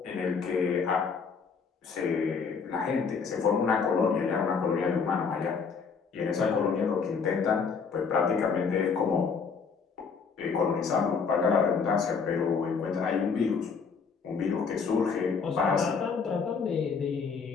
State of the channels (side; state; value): right; quieter; 5.6 dB